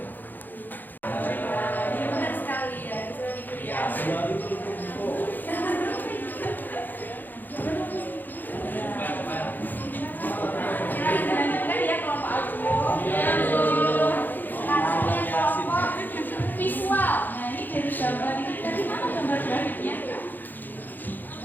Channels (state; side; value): late; right; 0.087 ms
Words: Benar sekali ya. Visual. Nah ini dari gambar ini tadi mana gambar grafiknya?